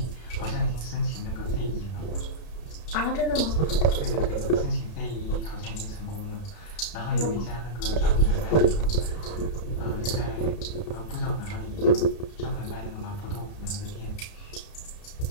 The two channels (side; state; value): right; late; 33 ms